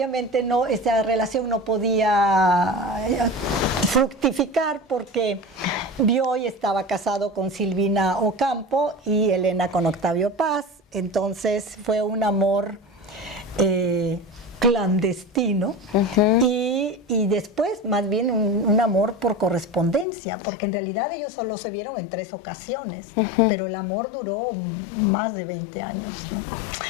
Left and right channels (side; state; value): right; drops out; at 20.1 s